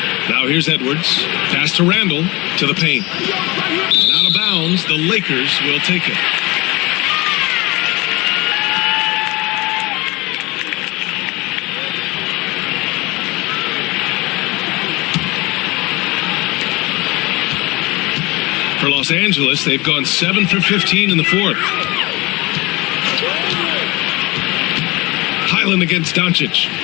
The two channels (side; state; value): right; quieter; 23.3 dB